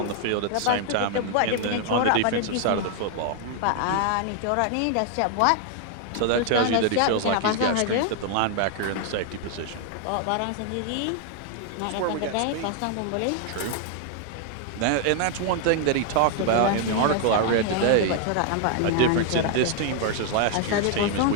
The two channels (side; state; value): both; different; correlation 0.00